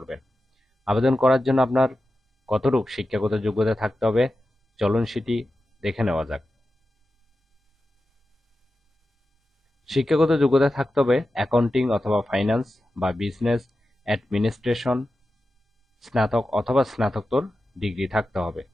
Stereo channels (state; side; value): normal; both; correlation 0.92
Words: আবেদন করার জন্য আপনার কতটুকু শিক্ষাগত যোগ্যতা থাকতে হবে চলুন সেটি দেখে নেওয়া যাক। শিক্ষাগত যোগ্যতা থাকতে হবে অ্যাকাউন্টিং অথবা ফাইন্যান্স বা বিজনেস অ্যাডমিনিস্ট্রেশন স্নাতক অথবা স্নাতকোত্তর ডিগ্রি থাকতে হবে।